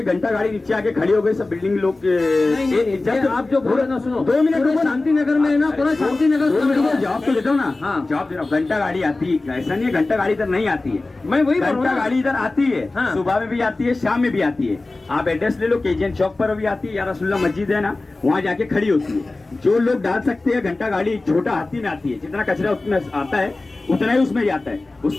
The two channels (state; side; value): quieter; right; 3.2 dB